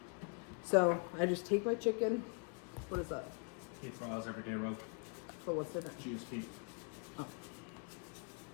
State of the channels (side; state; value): right; quieter; 38.9 dB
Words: So I just take my chicken. What is that? Eat Miles Everyday Road. So what's in it? GSP. Oh.